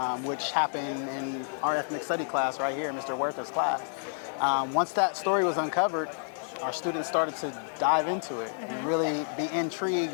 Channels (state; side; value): silent; right; digital silence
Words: which happened in our ethnic study class right here, Mr. Huerta's class. Once that story was uncovered, our students started to dive into it and really be intrigued